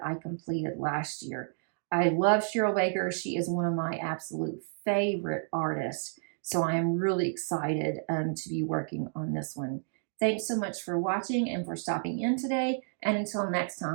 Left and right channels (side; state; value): left; silent; digital silence